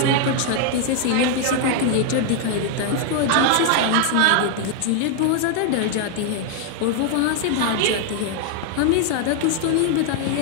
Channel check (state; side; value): different; both; correlation 0.00